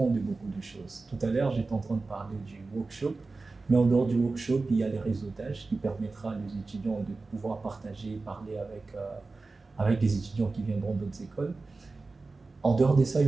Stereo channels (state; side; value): quieter; left; 3.7 dB